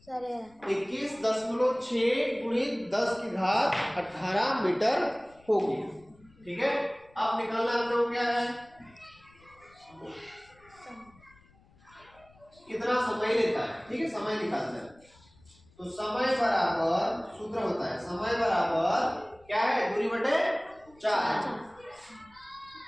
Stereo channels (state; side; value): noise; left; rumble, 28 dB below the sound